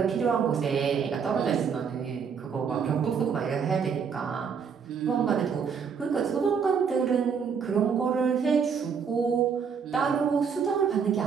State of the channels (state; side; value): quieter; left; 6.5 dB